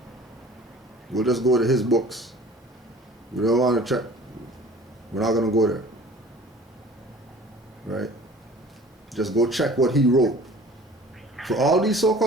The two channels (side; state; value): both; normal; correlation 0.47